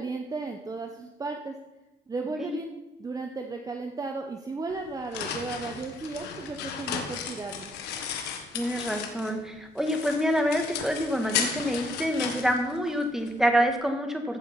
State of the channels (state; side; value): normal; both; correlation 0.70